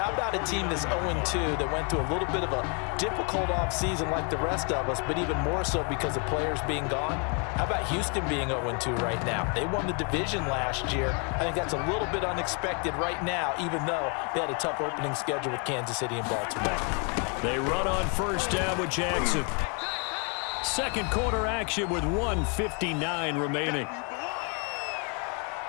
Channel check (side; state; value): right; quieter; 36.4 dB